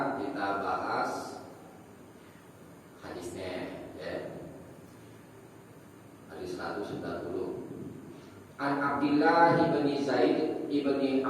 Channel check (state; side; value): identical; both; correlation 1.00